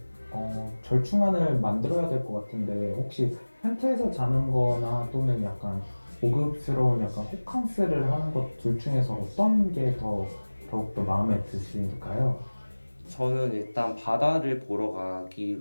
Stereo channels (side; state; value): both; inverted; correlation -1.00